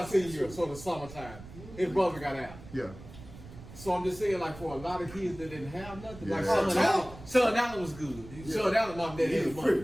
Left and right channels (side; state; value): right; noise; rumble, 16 dB below the sound